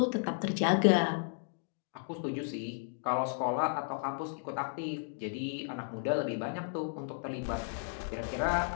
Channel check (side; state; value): right; silent; digital silence